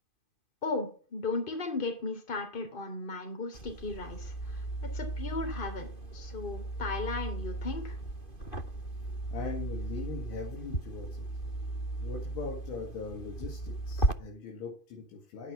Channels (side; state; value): right; late; 2.5 ms